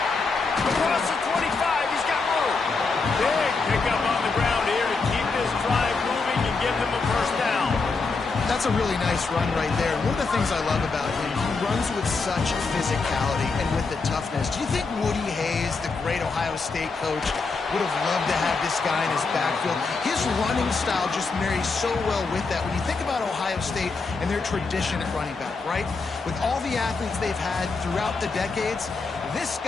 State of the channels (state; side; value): quieter; right; 4.2 dB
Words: Across the 25, he's got room. Big pickup on the ground here to keep this drive moving and give them a first down. That's a really nice run right there. One of the things I love about him, he runs with such physicality and with the toughness. Do you think Woody Hayes, the great Ohio State coach, would have loved to have this guy in his backfield? His running style just marries so well with that. When you think about Ohio State and their tradition at running back, right? With all the athletes they've had throughout the decades, this